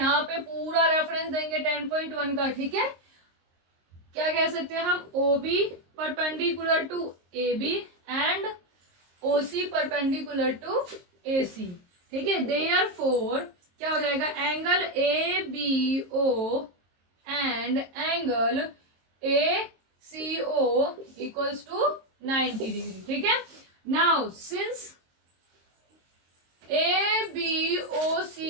पे पूरा रेफरेंस देंगे 10.1 का, ठीक है। क्या कह सकते हैं हम, OB perpendicular to AB and OC perpendicular to AC, ठीक है। देयरफॉर क्या हो जाएगा, angle ABO and angle ACO equals to 90 degree, ठीक है। Now since ABOC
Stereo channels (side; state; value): left; late; 22 ms